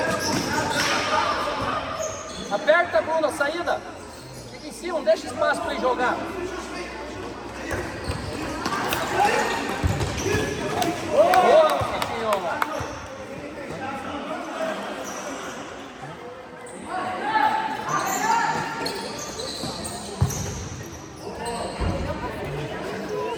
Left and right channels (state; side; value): identical; both; correlation 1.00